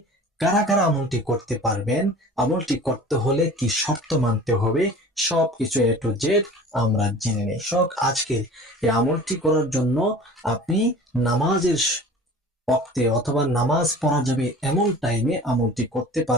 কারা কারা আমলটি করতে পারবেন, আমলটি করতে হলে কি শর্ত মানতে হবে, সবকিছু A to Z আমরা জেনে নেই। আজকে এই আমলটি করার জন্য আপনি নামাজের ওয়াক্তে অথবা নামাজ পড়া যাবে এমন টাইমে আমলটি করতে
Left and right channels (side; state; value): both; normal; correlation 0.42